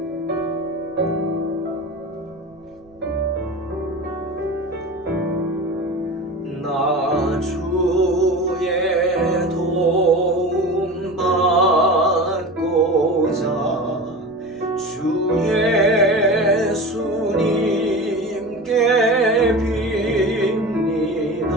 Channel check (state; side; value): noise; right; rumble, 30 dB below the sound